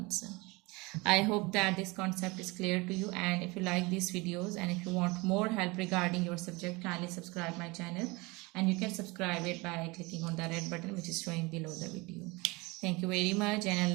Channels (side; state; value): left; quieter; 25.0 dB